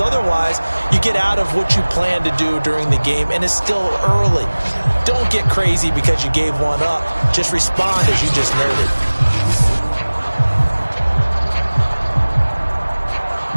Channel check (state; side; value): inverted; both; correlation -1.00